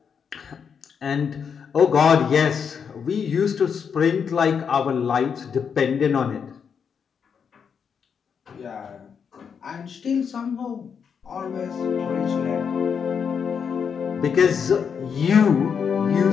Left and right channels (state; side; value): quieter; right; 6.8 dB